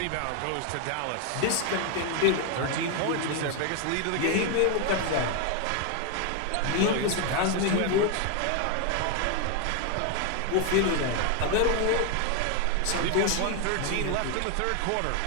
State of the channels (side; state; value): both; different; correlation 0.01